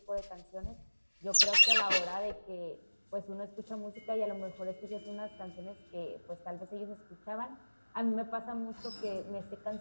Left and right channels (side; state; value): both; inverted; correlation -1.00